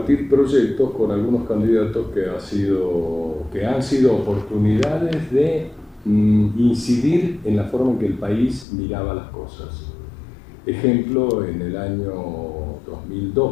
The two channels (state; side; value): drops out; right; at 8.7 s